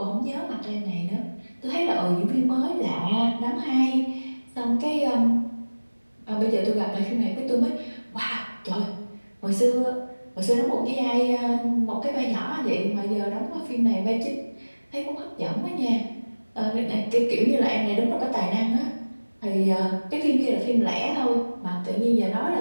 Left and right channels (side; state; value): both; inverted; correlation -1.00